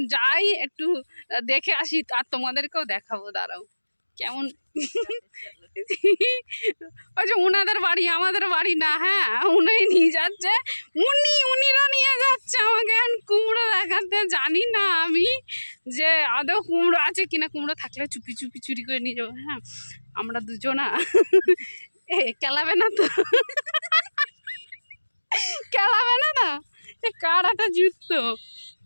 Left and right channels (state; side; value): inverted; both; correlation -1.00